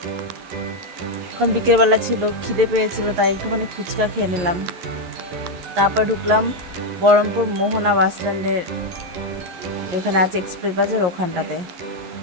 এখন বিকেলবেলা ছিল, খিদে পেয়েছিল, তাই একটুখানি ফুচকা খেয়ে নিলাম। তারপর ঢুকলাম বহরমপুর মোহনা বাস স্ট্যান্ডের, যেখানে আছে এক্সপ্রেস বাজার, ওখানটাতে।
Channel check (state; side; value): late; left; 11 ms